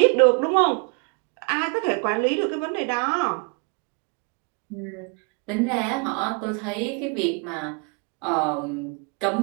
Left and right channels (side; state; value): left; quieter; 36.4 dB